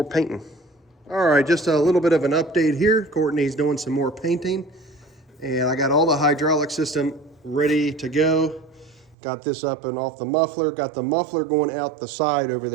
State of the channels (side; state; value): left; drops out; at 9.2 s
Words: painting. All right, just a little bit of an update here. Courtney's doing some more painting. And I got all the hydraulic system ready to go. Got this up and off the muffler. Got the muffler going out the side over